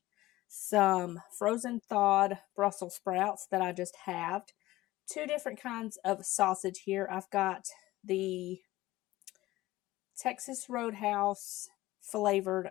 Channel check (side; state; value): right; quieter; 17.4 dB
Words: some frozen thawed Brussels sprouts that I just halved, two different kinds of sausage here. I've got the Texas Roadhouse flavored